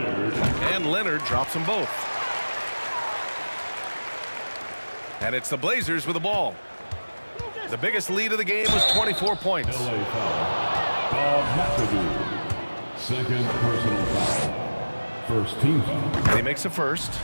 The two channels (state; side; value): inverted; both; correlation -1.00